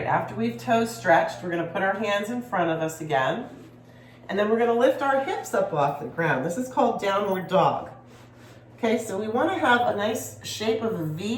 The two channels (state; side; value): identical; both; correlation 1.00